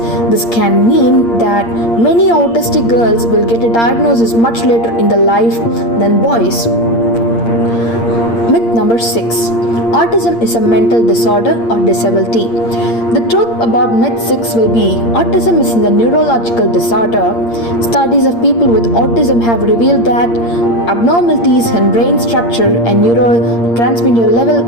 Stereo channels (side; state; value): right; late; 8.6 ms